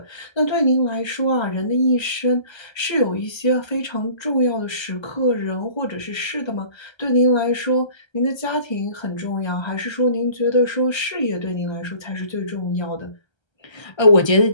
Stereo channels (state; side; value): late; right; 1.3 ms